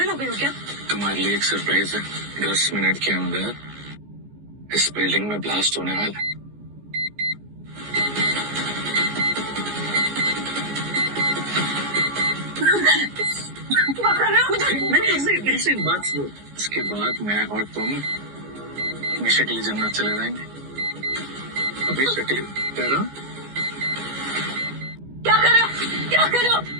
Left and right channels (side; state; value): left; late; 14 ms